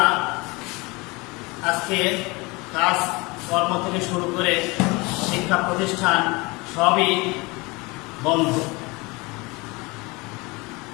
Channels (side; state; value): right; quieter; 25.2 dB